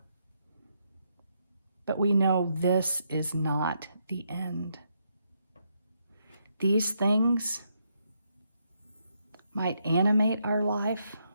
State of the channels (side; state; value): both; inverted; correlation -0.78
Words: but we know this is not the end. These things might animate our life,